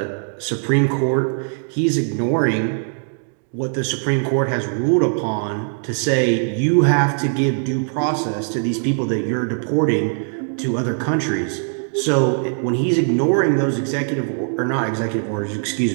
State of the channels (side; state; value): left; silent; 64 dB below the other